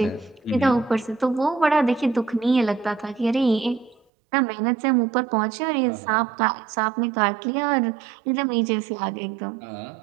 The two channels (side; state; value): left; drops out; at 4.0 s